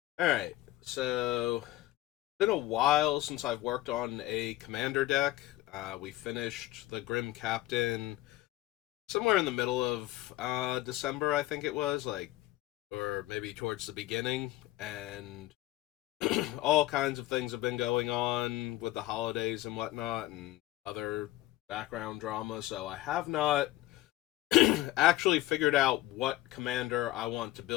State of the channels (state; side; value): quieter; right; 16.5 dB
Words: Alright, so it's been a while since I've worked on a commander deck. We finished the Grim Captain somewhere in the middle of December, I think it was, or maybe towards the beginning, and all kinds of things have been going on with the holidays and whatnot, and other background drama, so I have not actually figured out what commander I want to